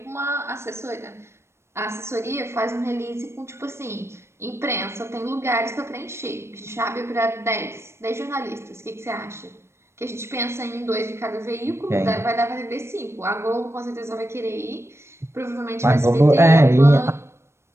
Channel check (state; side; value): late; left; 0.13 ms